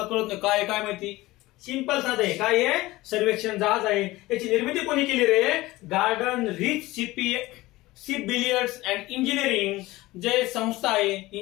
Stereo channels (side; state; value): right; quieter; 18.9 dB